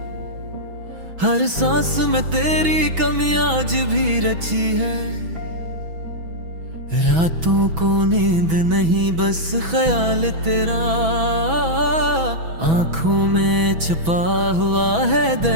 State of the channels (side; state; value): left; late; 6.1 ms